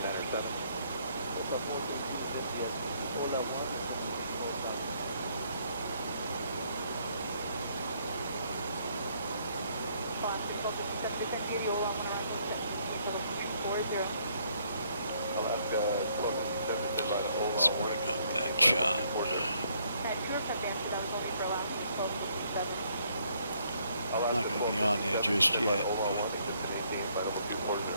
Alaska, Let's bring up that shot. I'm not going to be on there just yet.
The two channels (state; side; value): inverted; both; correlation -0.68